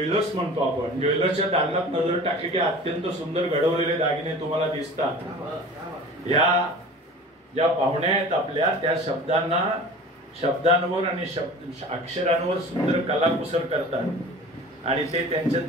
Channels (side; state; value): both; normal; correlation 0.40